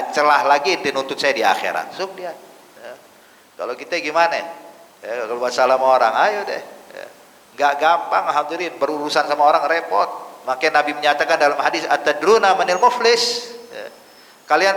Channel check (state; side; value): identical; both; correlation 1.00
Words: celah lagi ente nuntut saya di akhirat. So dia. Ya. Kalau kita gimana? Ya, kalau masalah sama orang, ayo deh. Ya. Nggak gampang, hadirin, berurusan sama orang repot. Makanya Nabi menyatakan dalam hadis, atadruna manil muflis. Ya.